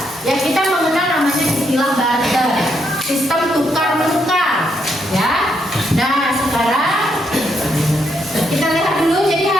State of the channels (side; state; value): both; normal; correlation 0.77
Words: ya kita mengenal namanya istilah barter. Sistem tukar menukar, ya. Nah sekarang kita lihat dulu. Jadi